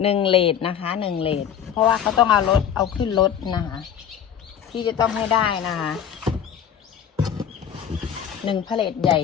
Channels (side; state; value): right; quieter; 8.8 dB